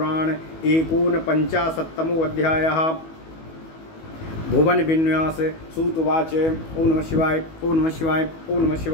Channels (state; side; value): late; right; 19 ms